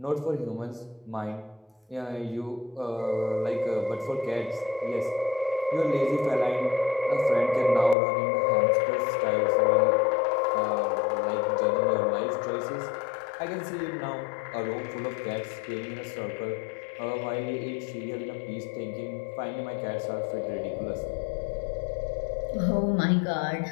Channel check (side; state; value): right; drops out; at 8.0 s